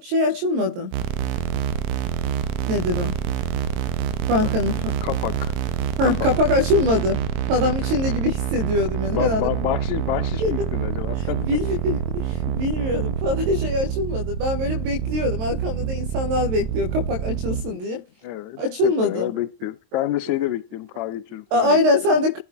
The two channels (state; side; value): late; left; 23 ms